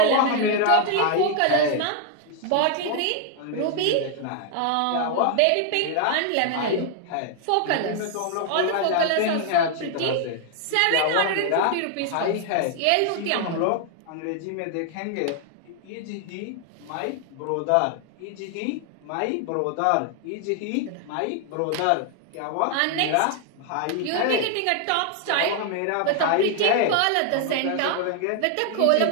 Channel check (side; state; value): both; different; correlation 0.00